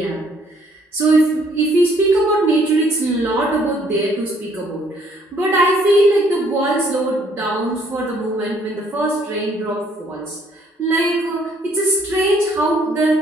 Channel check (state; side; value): normal; both; correlation 0.64